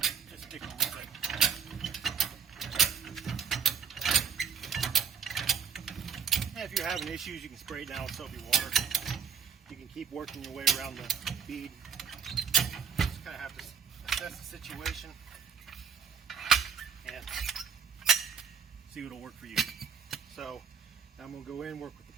Just stick on with it. And if you're having issues, you can spray it down with soapy water. You can keep working your way around the bead. Just kind of have to assess the situation and see what'll work for you. So I'm going to go in, work with the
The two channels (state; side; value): quieter; left; 6.9 dB